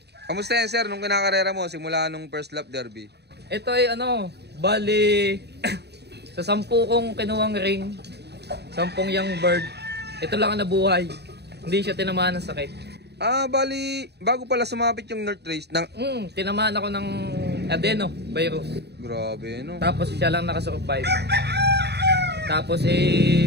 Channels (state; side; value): late; left; 0.48 ms